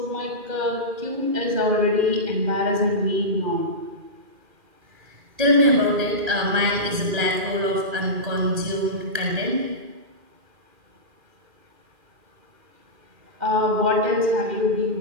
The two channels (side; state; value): left; late; 2.4 ms